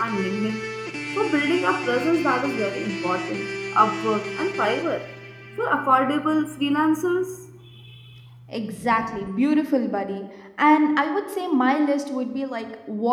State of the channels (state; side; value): identical; both; correlation 1.00